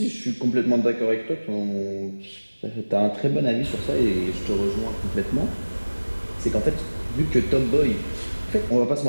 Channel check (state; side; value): inverted; both; correlation -1.00